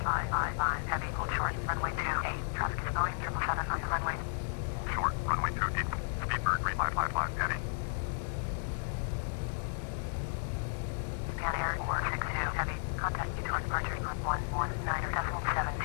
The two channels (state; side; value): silent; right; digital silence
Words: 555 heavy, hold short, runway 28, traffic is going 777 on the runway. Short, runway 28, Speedbird 3555 heavy. Pan Air 462 heavy, contact you towards departure on